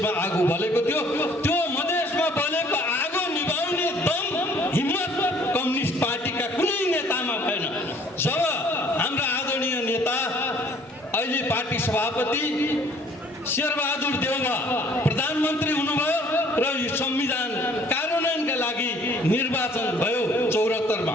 आगो बलेको थियो। त्यो मधेसमा बलेको आगो निभाउने दम, हिम्मत कम्युनिस्ट पार्टीका कुनै नेतामा भएन। जब हाम्रा आदरणीय नेता अहिले पार्टी सभापति शेरबहादुर देउवा प्रधानमन्त्री हुनुभयो र यो संविधान कार्यान्वयनका लागि निर्वाचन भयो 74 मा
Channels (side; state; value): both; normal; correlation 0.57